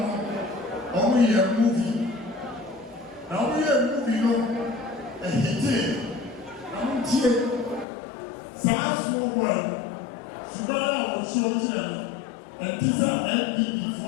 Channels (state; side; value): drops out; right; at 7.9 s